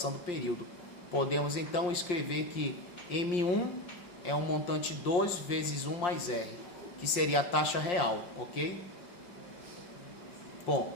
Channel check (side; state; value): right; late; 5.7 ms